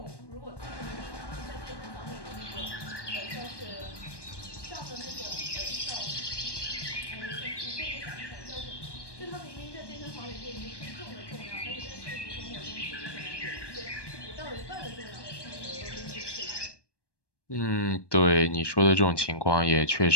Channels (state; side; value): late; right; 1.2 ms